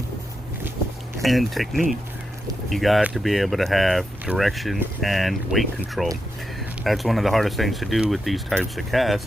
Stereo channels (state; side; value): normal; both; correlation 0.86